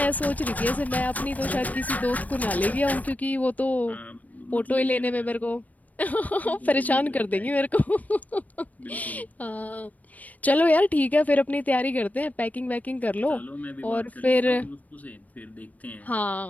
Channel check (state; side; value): late; right; 0.073 ms